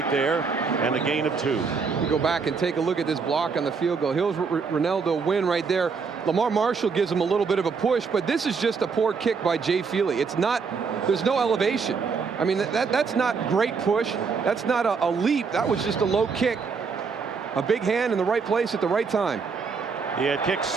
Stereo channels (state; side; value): quieter; left; 5.3 dB